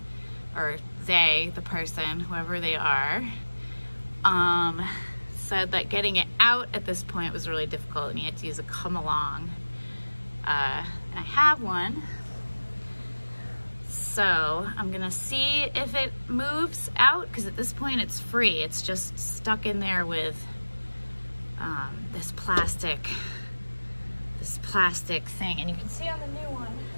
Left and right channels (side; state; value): both; inverted; correlation -1.00